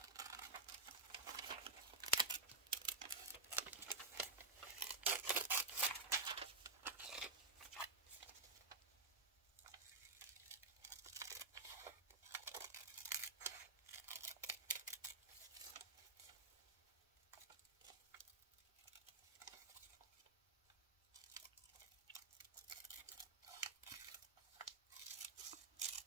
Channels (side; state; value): left; quieter; 3.4 dB